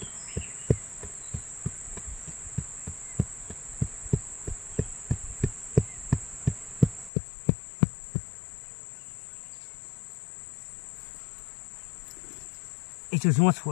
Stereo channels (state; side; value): drops out; right; at 7.1 s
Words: ấy chứ chúng ta